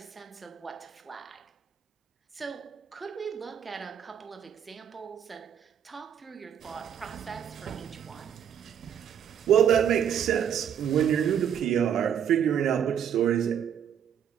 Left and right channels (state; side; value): quieter; left; 8.8 dB